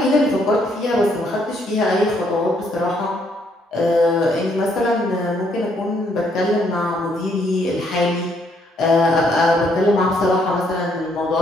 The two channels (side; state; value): both; normal; correlation 0.70